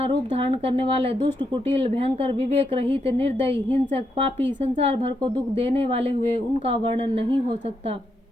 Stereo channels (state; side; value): normal; both; correlation 0.80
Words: रूप धारण करने वाले दुष्ट, कुटिल, भयंकर, विवेक रहित, निर्दयी, हिंसक, पापी, संसार भर को दुख देने वाले हुए। उनका वर्णन नहीं हो सकता।